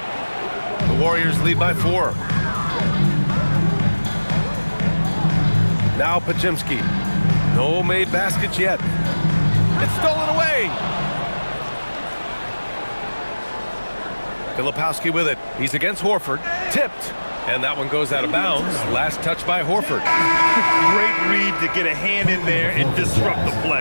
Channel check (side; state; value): both; inverted; correlation -1.00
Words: The Warriors lead by 4. Now Podziemski. No made baskets yet. It's stolen away. Filipowski with it. He's against Horford. Tipped. And that one goes out of bounds. Last touch by Horford. Great read to get a hand in there and disrupt the